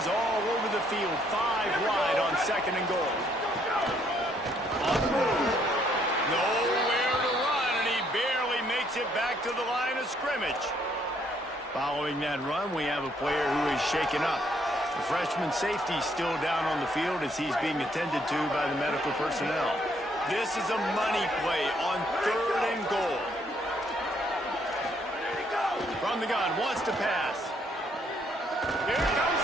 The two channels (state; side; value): normal; both; correlation 0.69